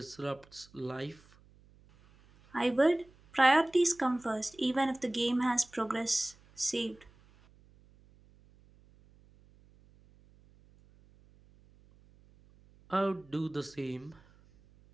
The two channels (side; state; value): right; noise; hum, 28 dB below the sound